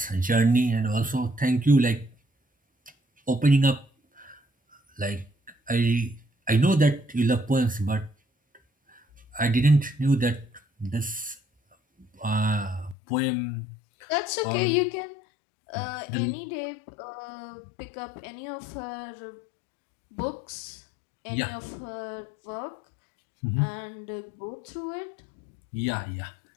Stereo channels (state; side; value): drops out; right; at 13.0 s